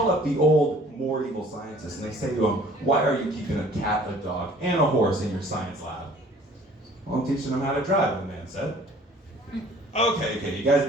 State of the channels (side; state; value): both; normal; correlation 0.53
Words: up the old, more evil scientists, and they say to him, why are you keeping a cat, a dog, and a horse in your science lab? Well, I'm teaching them how to drive, the man said. Okay, you guys